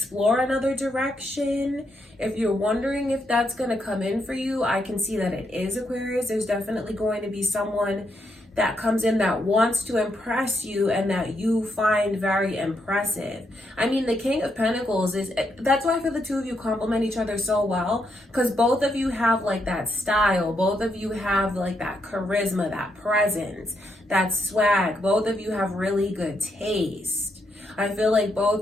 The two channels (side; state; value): both; normal; correlation 0.79